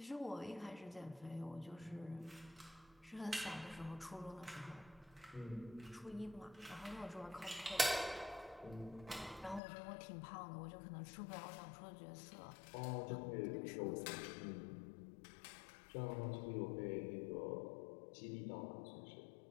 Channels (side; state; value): right; drops out; at 9.6 s